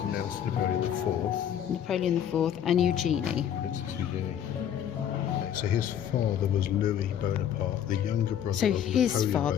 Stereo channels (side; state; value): right; quieter; 9.5 dB